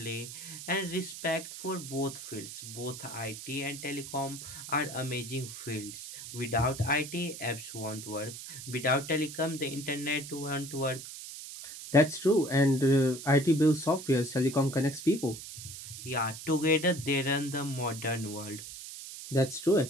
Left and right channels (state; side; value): noise; right; hiss, 11 dB below the sound